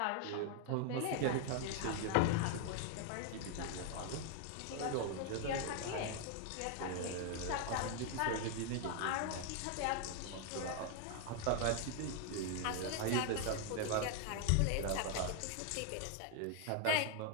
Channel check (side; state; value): both; different; correlation 0.00